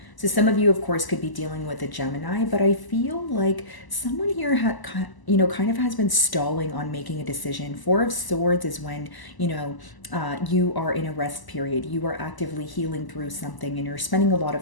So some of you, of course, could be dealing with a Gemini, but I feel like someone here kind of has been stalling on making a decision. Four of Swords is when, you are in a rest period. You are actively healing through something and you're spending a lot of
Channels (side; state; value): right; late; 1.0 ms